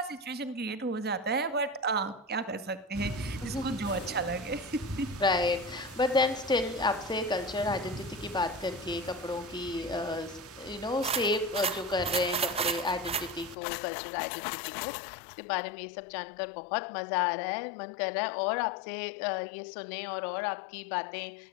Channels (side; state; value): right; drops out; at 13.6 s